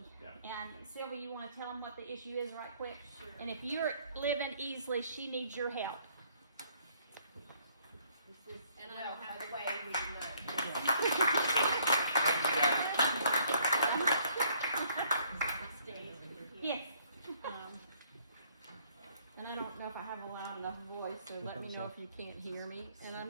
Yeah. And Sylvie, you want to tell them what the issue is right quick? Sure. And if you're living Easley, she needs your help. And I don't have a way Yes. And I don't know if I have a loud enough voice, so let me know if you can't hear me. And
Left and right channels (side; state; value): both; inverted; correlation -0.65